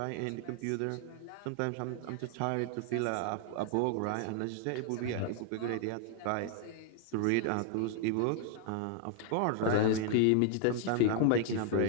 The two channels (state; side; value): different; both; correlation 0.00